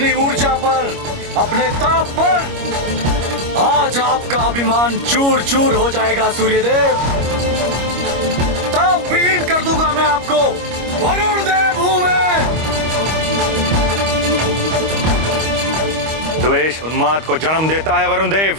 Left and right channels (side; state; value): left; late; 25 ms